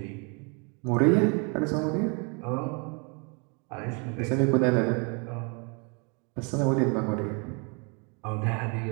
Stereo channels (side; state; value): left; quieter; 34.0 dB